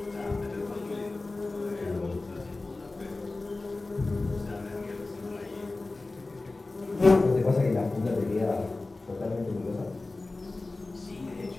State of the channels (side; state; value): right; quieter; 3.3 dB